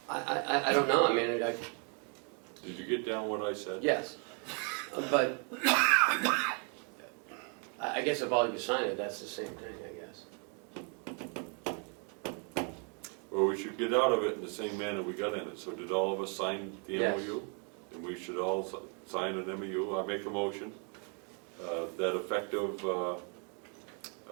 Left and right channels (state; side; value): quieter; left; 39.0 dB